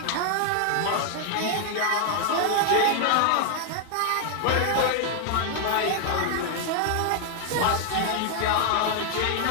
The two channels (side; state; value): both; different; correlation 0.00